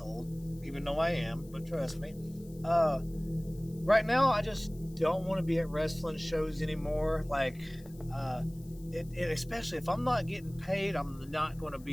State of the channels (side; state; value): left; noise; hiss, 25 dB below the sound